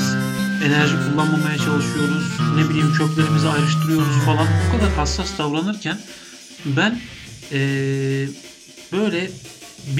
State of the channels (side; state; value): both; identical; correlation 1.00